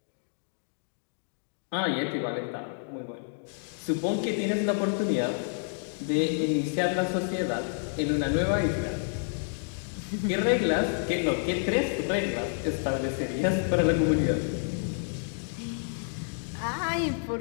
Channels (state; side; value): silent; right; digital silence